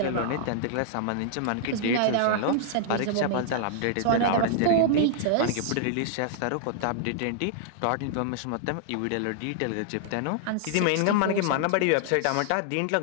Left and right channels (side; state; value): both; different; correlation -0.01